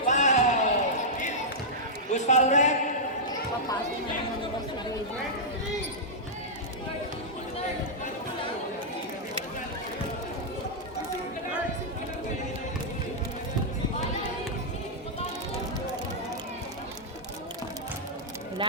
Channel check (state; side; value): normal; both; correlation -0.09